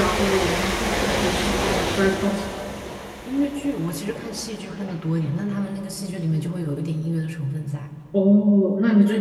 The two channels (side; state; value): both; identical; correlation 1.00